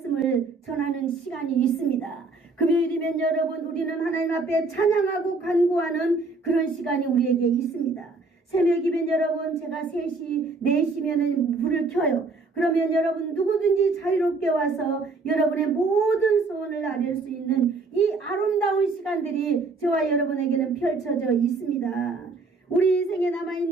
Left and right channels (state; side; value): quieter; left; 3.8 dB